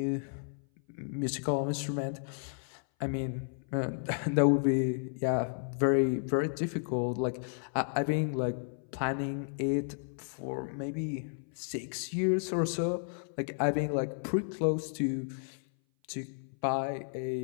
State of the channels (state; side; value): silent; right; 56 dB below the other